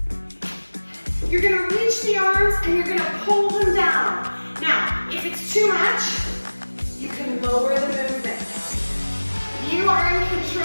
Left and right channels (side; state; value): both; inverted; correlation -1.00